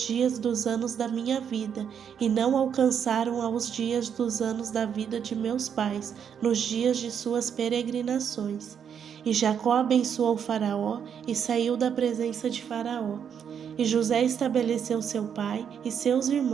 dos anos da minha vida, e não alcançaram aos dias dos anos da vida de meus pais, nos dias de suas peregrinações. E Jacó abençoou Faraó e saiu da presença de Faraó. E José estabeleceu seu pai e seus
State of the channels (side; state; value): left; quieter; 7.9 dB